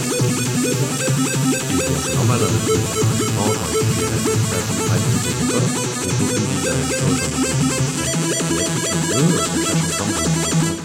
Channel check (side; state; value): both; identical; correlation 1.00